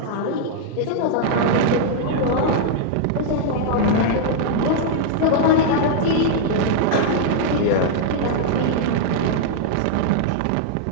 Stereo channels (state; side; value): different; both; correlation -0.01